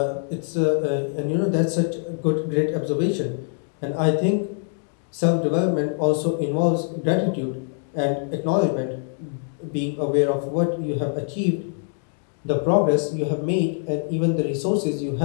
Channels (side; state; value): right; silent; digital silence